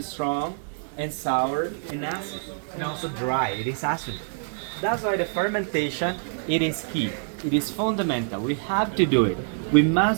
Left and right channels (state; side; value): silent; left; digital silence